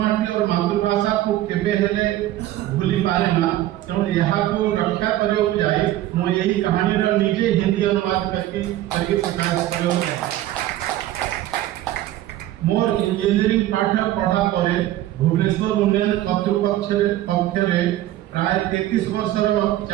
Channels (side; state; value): left; quieter; 14.2 dB